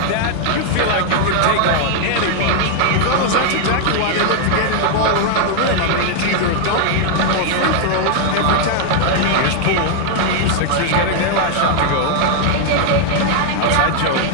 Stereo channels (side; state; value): both; different; correlation 0.00